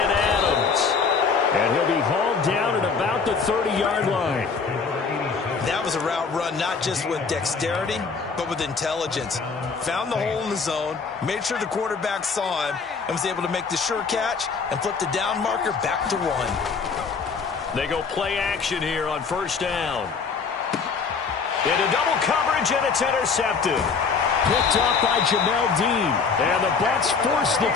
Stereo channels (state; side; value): quieter; right; 5.2 dB